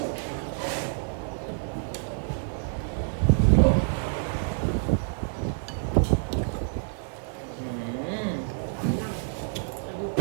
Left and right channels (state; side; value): silent; left; 59 dB below the other